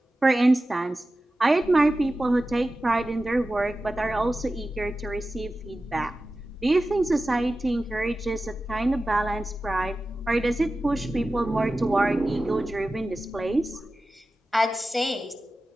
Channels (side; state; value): both; normal; correlation 0.94